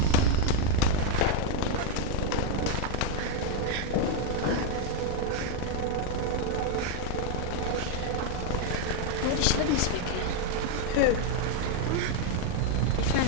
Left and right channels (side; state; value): both; different; correlation 0.00